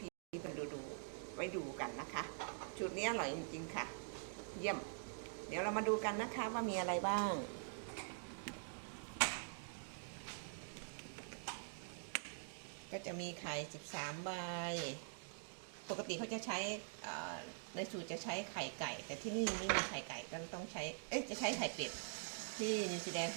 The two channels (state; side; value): silent; left; digital silence